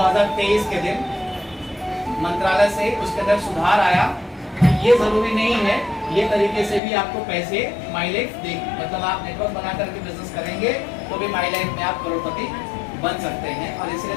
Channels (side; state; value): right; drops out; at 6.8 s